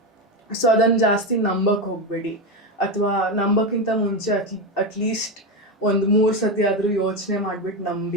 ಸೊ ಅದನ್ನು ಜಾಸ್ತಿ ನಂಬಕ್ಕೆ ಹೋಗಬೇಡಿ, ಅಥವಾ ನಂಬಕ್ಕಿಂತ ಮುಂಚೆ ಅಟ್ಲೀಸ್ಟ್ ಒಂದು 3 ಸತಿ ಆದರೂ ಯೋಚನೆ ಮಾಡಿಬಿಟ್ಟು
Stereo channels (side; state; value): both; normal; correlation 0.13